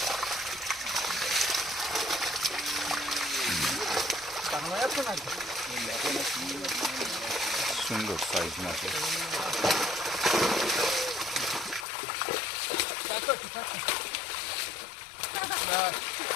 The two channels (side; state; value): right; drops out; at 11.9 s